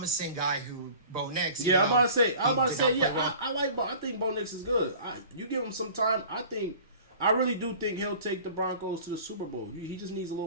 guy who Bo Nix. Yeah, I'm about to say, I like Bo. I think Bo Nix is good. You give him some time, I really do think he'll take the Broncos to the Super Bowl. He just needs a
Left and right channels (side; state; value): both; inverted; correlation -0.44